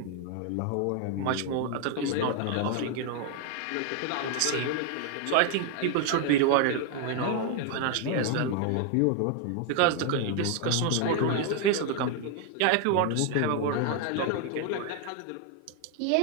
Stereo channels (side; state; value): both; different; correlation 0.01